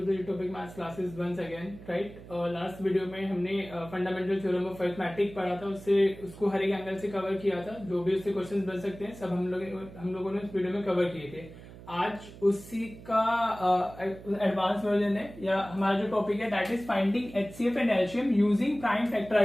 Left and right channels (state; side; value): noise; right; hum, 17 dB below the sound